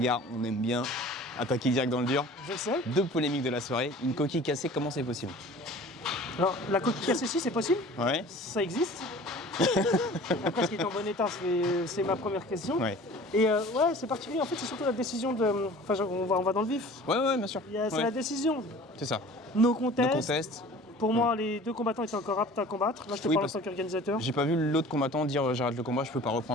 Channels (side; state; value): both; normal; correlation 0.44